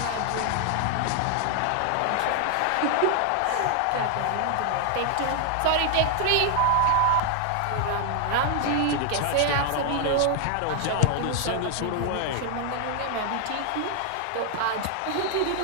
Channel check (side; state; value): both; different; correlation 0.00